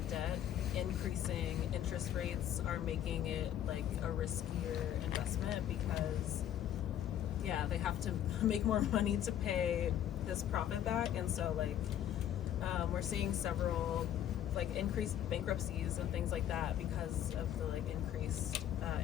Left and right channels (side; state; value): right; quieter; 10.7 dB